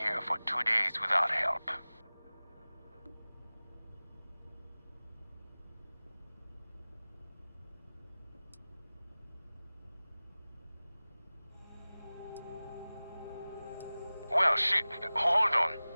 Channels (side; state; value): both; inverted; correlation -0.98